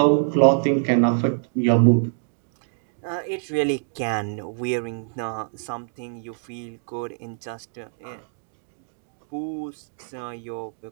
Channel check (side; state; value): left; silent; digital silence